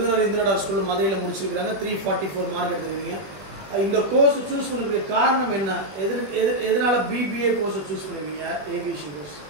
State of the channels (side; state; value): left; late; 20 ms